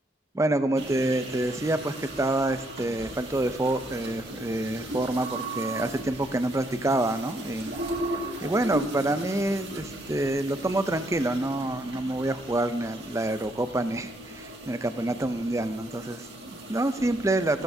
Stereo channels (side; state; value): both; normal; correlation 0.73